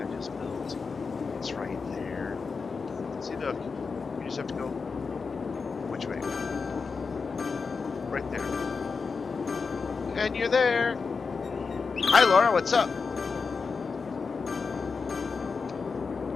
just built. It's right there. See, look. You just have to go. Which way? Right there. And you're there. Hi, Laura. What's up?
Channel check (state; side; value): quieter; right; 4.9 dB